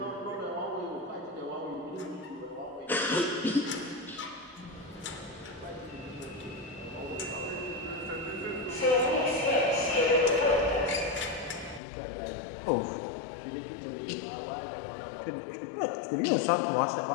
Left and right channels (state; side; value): drops out; right; at 11.8 s